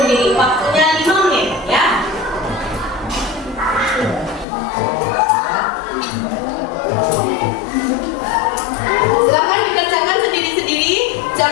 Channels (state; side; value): drops out; right; at 4.5 s